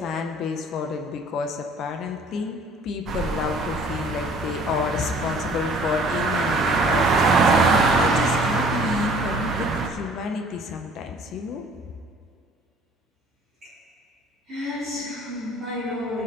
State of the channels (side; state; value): both; normal; correlation 0.53